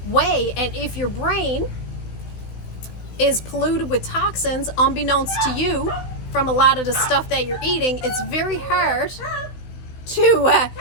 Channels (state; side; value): late; right; 16 ms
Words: way. And if your brain is polluted with toxins, unbeknownst to you, from a lot of the stuff that you're eating, it's very hard to